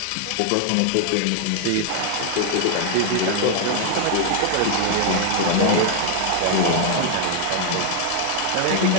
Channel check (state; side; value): different; both; correlation 0.00